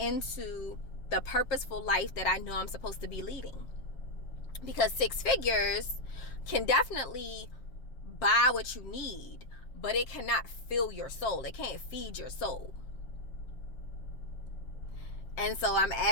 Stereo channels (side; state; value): right; late; 7.5 ms